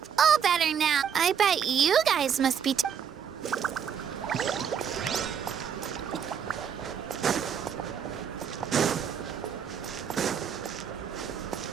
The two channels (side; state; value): left; quieter; 7.9 dB